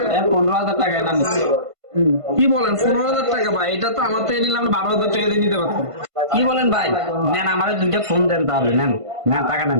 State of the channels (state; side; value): late; left; 1.5 ms